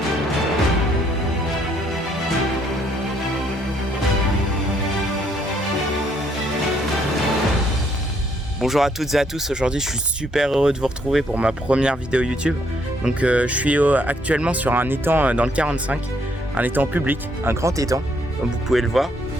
Bonjour à toutes et à tous, aujourd'hui je suis super heureux de vous retrouver pour ma première vidéo YouTube. Donc je suis actuellement sur un étang dans le 45, un étang public, un grand étang, comme vous pouvez le voir.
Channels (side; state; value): both; normal; correlation 0.69